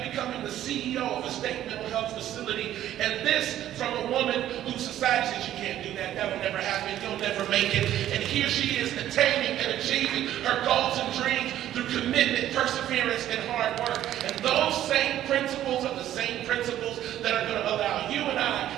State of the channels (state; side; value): quieter; left; 12.3 dB